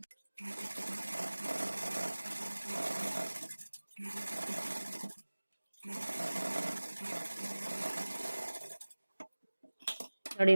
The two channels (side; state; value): both; inverted; correlation -1.00